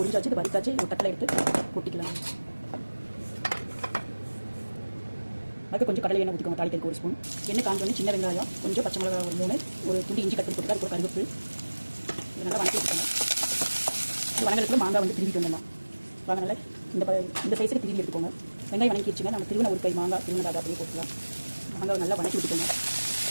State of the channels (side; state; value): both; inverted; correlation -1.00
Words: பொரிஞ்சாச்சு. இது வறுத்தாச்சு. ஒரு தட்டில் எடுத்து கொட்டிக்கலாம். அதுக்கு கொஞ்சம் கடலை எண்ணெய் ஊற்றிக்கோங்க. தாளிக்கிறதுக்கு 1 ஸ்பூன் எண்ணெய் காஞ்சோடனே சின்ன வெங்காயம், கொஞ்சம் பச்சை மிளகாய் ஒரு 3, ஒரு துண்டு இஞ்சி கட் பண்ணி போட்டுக்கா. அதுக்கு கருவேப்பு இது நல்லா வணக்கி வச்சுக்கோங்க. இது வணங்கிறதுக்குள்ள மாங்காய் திருவிட்டு வந்துடலாம். வாங்க நல்லா இந்த சைஸுக்கு திருவி எடுத்துக்கோங்க. வெங்காயம் வணக்கி வச்சுங்க. நம்ம திருவின ஒரு கை மாங்காய் திருவினதாக அப்படியே போட்டுக்கலாம். மாங்காய் நல்லா வணக்கி விட்டுக்கோங்க.